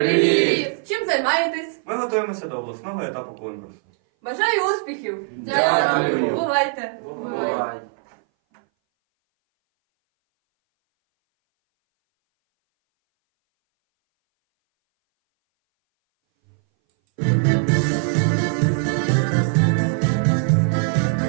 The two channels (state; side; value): silent; left; 60 dB below the other